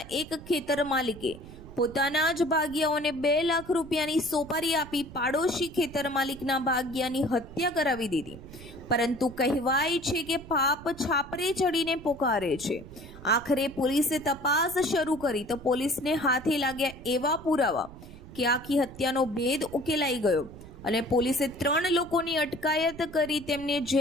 એક ખેતર માલિકે પોતાના જ ભાગિયાઓને 2 લાખ રૂપિયાની સોપારી આપી પાડોશી ખેતર માલિકના ભાગિયાની હત્યા કરાવી દીધી। પરંતુ કહેવાય છે કે પાપ છાપરે ચડીને પોકારે છે। આખરે પોલીસે તપાસ શરૂ કરી તો પોલીસને હાથે લાગ્યા એવા પુરાવા કે આખી હત્યાનો ભેદ ઉકેલાઈ ગયો અને પોલીસે 3 લોકોની અટકાયત કરી તેમને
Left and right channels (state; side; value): noise; right; rumble, 16 dB below the sound